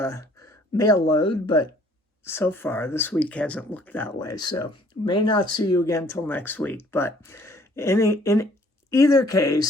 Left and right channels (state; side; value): normal; both; correlation 0.59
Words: mail load, but so far this week hasn't looked that way. So may not see you again till next week. But in either